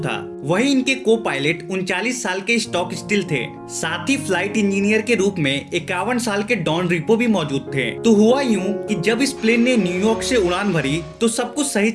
था। वहीं इनके को पायलट 39 साल के स्टॉक स्टिल थे। साथ ही फ्लाइट इंजीनियर के रूप में 51 साल के डॉन रिपो भी मौजूद थे। तो हुआ यूं कि जब इस प्लेन ने न्यूयॉर्क से उड़ान भरी तो सब कुछ सही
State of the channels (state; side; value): identical; both; correlation 1.00